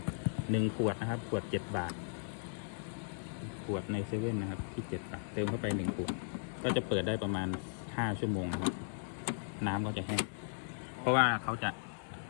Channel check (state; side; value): silent; right; digital silence